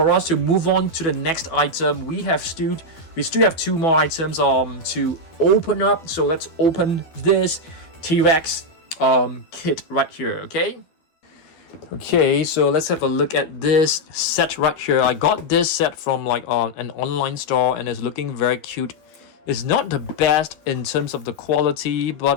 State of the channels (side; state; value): right; late; 12 ms